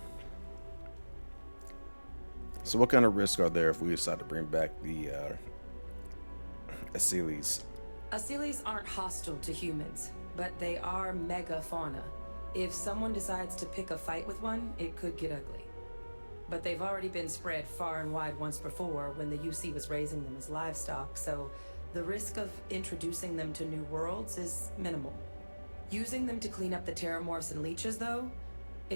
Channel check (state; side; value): inverted; both; correlation -1.00